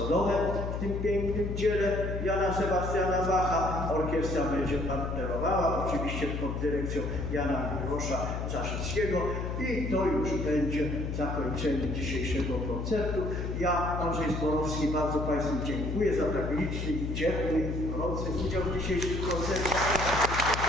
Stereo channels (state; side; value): noise; left; hum, 3 dB below the sound